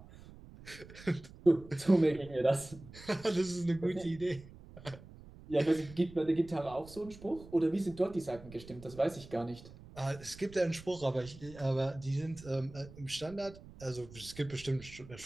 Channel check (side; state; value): right; noise; rumble, 18 dB below the sound